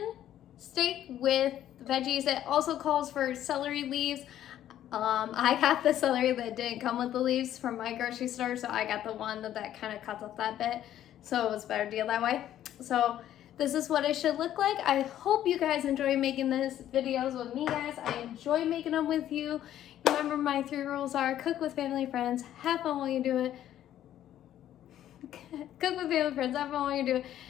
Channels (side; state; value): right; quieter; 11.7 dB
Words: steak with veggies. It also calls for celery leaves. I got the celery that didn't come with the leaves from my grocery store, so I got the one that kind of cuts off that bit, so it was a better deal that way. So this is what it should look like. I hope you guys enjoy making these videos with me, guys. I enjoy making them with you. Remember, my 3 rules are: cook with family, friends, have fun while you do it. Cook with family, friends, have fun while you do it,